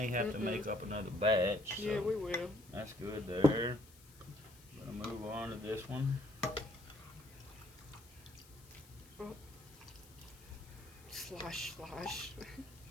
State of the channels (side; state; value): left; noise; hiss, 23 dB below the sound